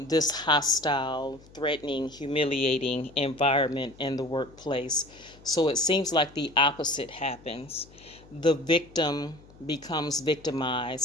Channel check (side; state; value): left; noise; hum, 24 dB below the sound